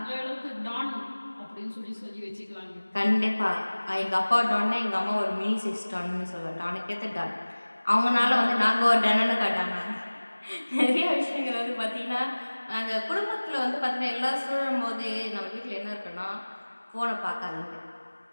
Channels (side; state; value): both; inverted; correlation -1.00